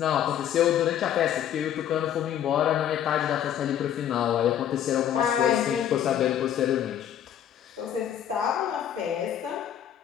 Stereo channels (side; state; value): right; quieter; 10.1 dB